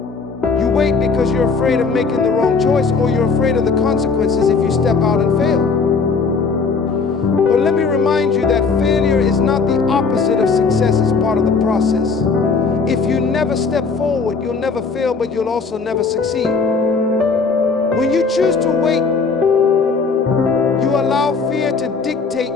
You wait because you're afraid of making the wrong choice, or you're afraid of the consequences if you step out and fail. But let me remind you that failure is not the opposite of success, it's part of the process. If you never step forward, you'll never fail, but you'll also never succeed. When you choose to wait, you allow fear to dictate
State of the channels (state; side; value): quieter; right; 4.7 dB